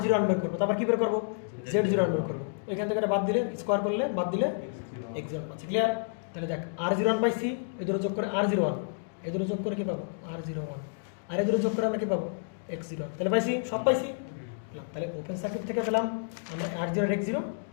0 1 বের করবো, তারপর কি বের করবো? জেড 0 1 বের করবো। এখান থেকে বাদ দিলে স্কোয়ার করলে বাদ দিলে এক্স 0 1 পাচ্ছি। ক্লিয়ার? তাহলে দেখ আর 0 1 পাইছি, এই দুটো যোগ করে আর 0 1, এই দুটো যোগ করে কি পাবো? আর 0 1, আর এই দুটো যোগ করে আমরা কি পাবো? এক্স 0 1। তাহলে পাইছি, সব পাইছি। তাহলে ওপেন সার্কিট থেকে পেলাম আমরা আর 0 এক্স 0,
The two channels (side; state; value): right; silent; digital silence